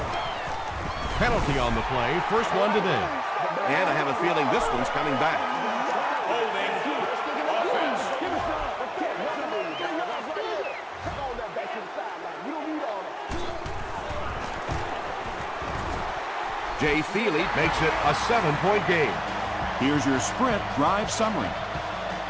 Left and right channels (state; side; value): identical; both; correlation 1.00